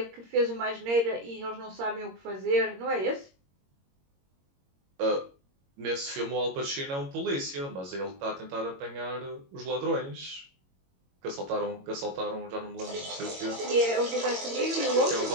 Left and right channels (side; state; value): left; late; 22 ms